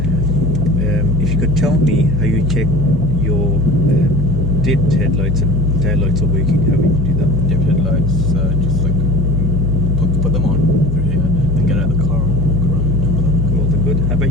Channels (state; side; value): normal; both; correlation 0.39